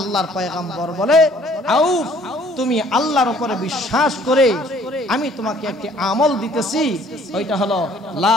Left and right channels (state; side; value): normal; both; correlation 0.58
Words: পয়গম্বর বলে, আউফ, তুমি আল্লাহর উপরে বিশ্বাস করে আমি তোমাকে একটি আমল দিতেছি, ওইটা হলো লা